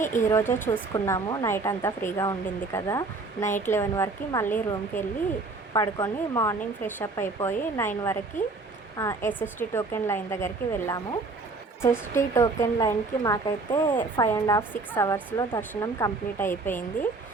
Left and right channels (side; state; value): left; quieter; 3.7 dB